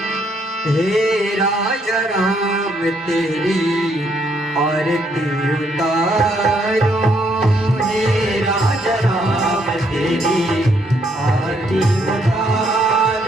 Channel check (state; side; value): normal; both; correlation 0.71